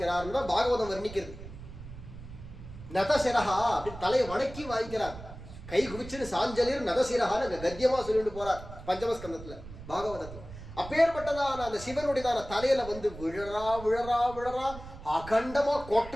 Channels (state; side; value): noise; right; rumble, 14 dB below the sound